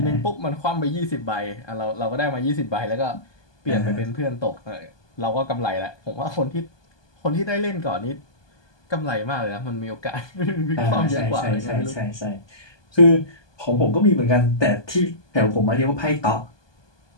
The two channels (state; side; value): late; right; 1.2 ms